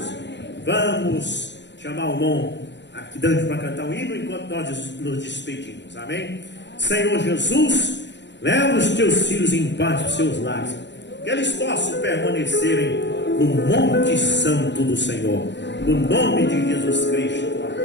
Vamos chamar o irmão aqui dentro para cantar o hino enquanto nós nos despedimos, amém. Senhor Jesus, leva os teus filhos em paz para os seus lares, que eles possam permanecerem no Monte Santo do Senhor, no nome de Jesus Cristo,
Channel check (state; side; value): late; right; 0.52 ms